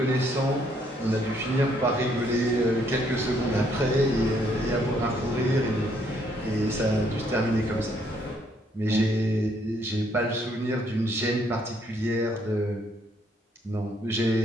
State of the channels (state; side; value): normal; both; correlation 0.69